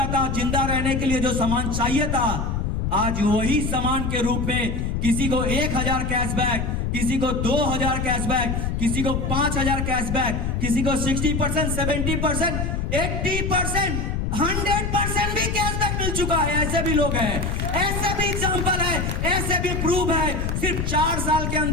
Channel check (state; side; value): noise; left; rumble, 1 dB below the sound